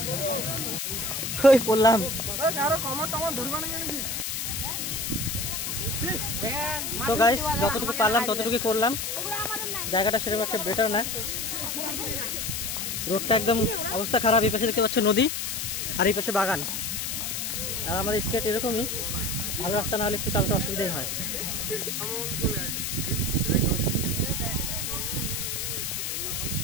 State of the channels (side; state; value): left; noise; hiss, 2 dB below the sound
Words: ওই পড়লাম। তো গাইস যতটুকু পারলাম ততটুকু করলাম। জায়গাটা সেরকম একটা বেটার না, রোডটা একদম অবস্থা খারাপ। এই পাশে দেখতে পাচ্ছ নদী, আর এই পাশে বাগান। আর আমাদের স্কেট এরকমই, ভালো রাস্তা না হলে একটু চালাতে অসুবিধাই হয়।